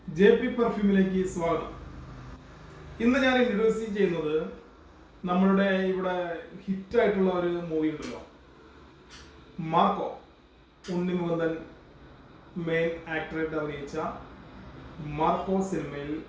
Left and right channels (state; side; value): identical; both; correlation 1.00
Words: JP പെർഫ്യൂമിലേക്ക് സ്വാഗതം. ഇന്ന് ഞാൻ ഇൻട്രൊഡ്യൂസ് ചെയ്യുന്നത് നമ്മളുടെ ഇവിടെ ഹിറ്റായിട്ടുള്ള ഒരു മൂവി ഉണ്ടല്ലോ, മാർക്കോ. ഉണ്ണി മുകുന്ദൻ മെയിൻ ആക്ടറായിട്ട് അഭിനയിച്ച മാർക്കോ സിനിമയിൽ